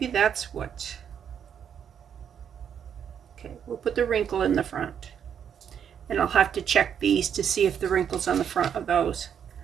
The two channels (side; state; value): left; quieter; 8.3 dB